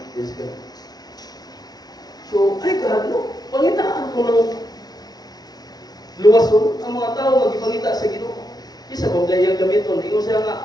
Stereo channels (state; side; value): late; right; 0.19 ms